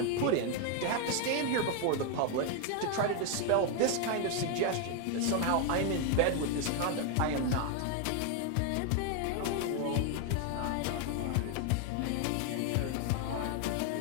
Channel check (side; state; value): both; different; correlation 0.01